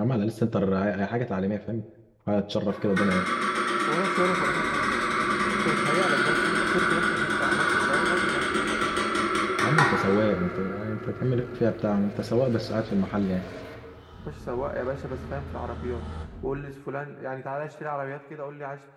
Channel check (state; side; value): identical; both; correlation 1.00